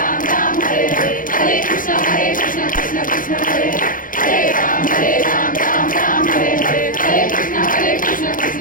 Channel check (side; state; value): right; late; 0.40 ms